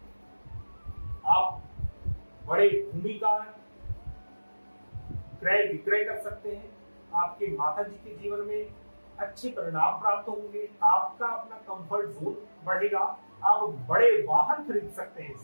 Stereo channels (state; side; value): inverted; both; correlation -1.00